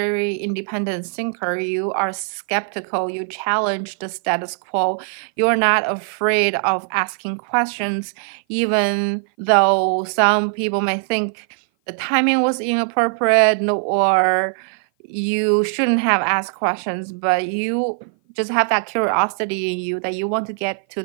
independent thinker. You are skeptical. You challenge the status quo. You're not afraid of asking questions, even though some people may think the timing was inappropriate or you shouldn't have asked questions, but you just have that curiosity in you that you want to get to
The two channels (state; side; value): silent; left; 56 dB below the other